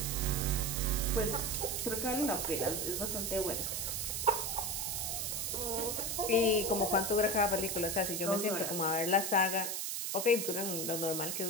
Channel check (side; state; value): right; noise; hiss, 2 dB below the sound